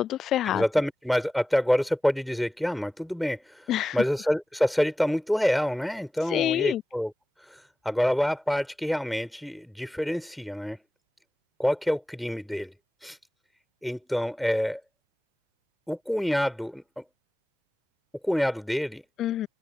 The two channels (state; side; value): normal; both; correlation 0.94